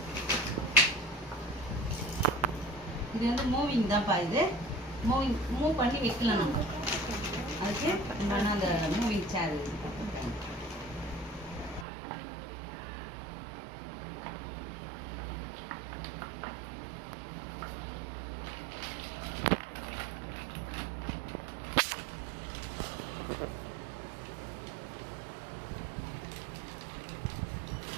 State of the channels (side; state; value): left; drops out; at 11.9 s